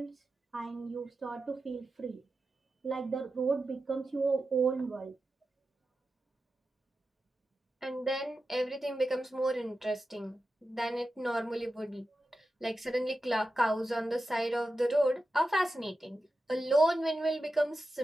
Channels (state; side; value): normal; both; correlation 0.91